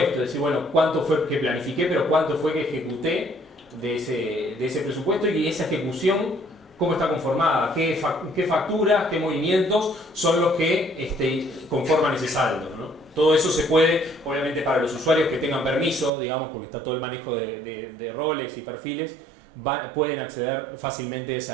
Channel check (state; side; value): drops out; left; at 16.1 s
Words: decir, bueno, cuánto fue que planifiqué, pero cuánto fue que ejecuté de ese presupuesto y esa ejecución, cómo está conformada, qué facturas, qué movimientos son los que conforman ese saldo, ¿no? Todo eso se puede, obviamente para los usuarios que tengan permiso, digamos, porque está todo el manejo de roles y perfiles, pueden acceder fácilmente